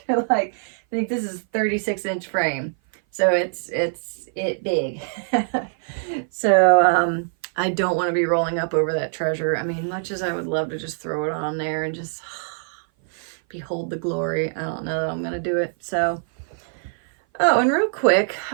Like, I think this is 36-inch frame. So it's big. So I don't want to be rolling up over that treasure. I mean, much as I would love to just throw it on there and just behold the glory, I don't know that I'm going to do it. So, oh, and real quick,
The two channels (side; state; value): left; silent; 58 dB below the other